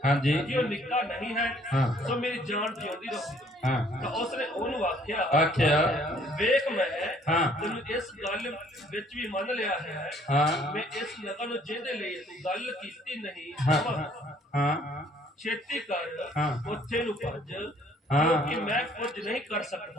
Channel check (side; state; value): both; normal; correlation 0.61